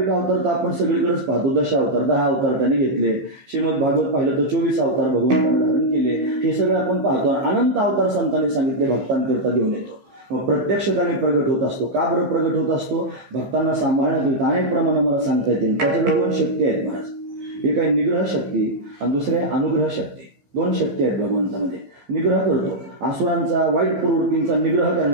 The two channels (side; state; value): left; late; 15 ms